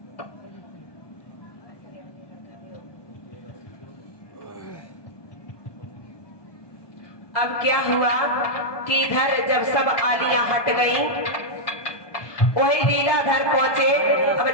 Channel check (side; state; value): right; late; 1.2 ms